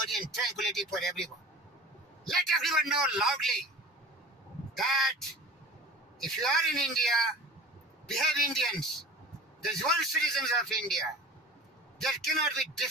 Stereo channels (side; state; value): both; normal; correlation 0.38